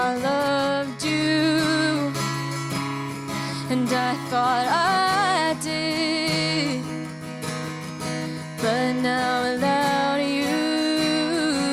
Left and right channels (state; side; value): identical; both; correlation 1.00